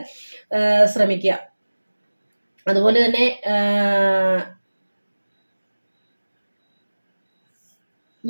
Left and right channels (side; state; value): both; inverted; correlation -1.00